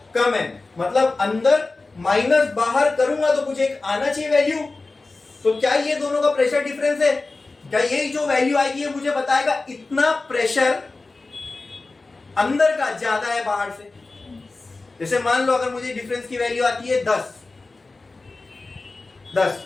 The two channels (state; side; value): quieter; right; 3.5 dB